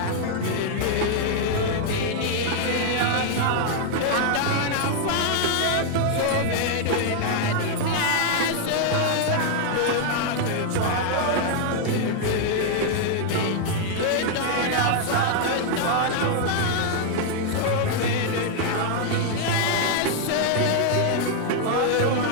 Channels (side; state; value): both; different; correlation 0.00